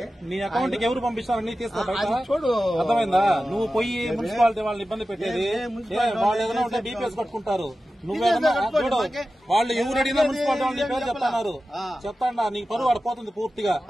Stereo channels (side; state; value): both; normal; correlation 0.94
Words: నీ అకౌంట్ కి ఎవరు పంపిస్తారు? నీ తీసుకో చూడు. అర్థమైందా? నువ్వు పోయి మున్సిపాలిటీ వాళ్ళని ఇబ్బంది పెట్టేది. వాళ్ళు ఏదైనా ఉంటే డీపీఎస్ కట్టుకుంటారు. నువ్వేదన్నా చూడు, వాళ్ళు ఎవరు అడిగినా మున్సిపాలిటీ వాళ్ళ నీ పేరు చెప్తున్నారు. చెప్తాడా? నీకు పరువు ఆడిపోతుంది పూర్తిగా.